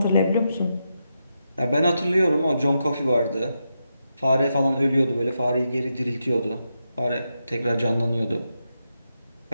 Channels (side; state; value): both; inverted; correlation -0.86